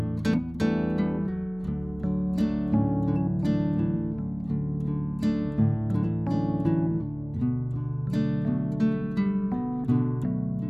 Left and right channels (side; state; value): right; noise; hum, 20 dB below the sound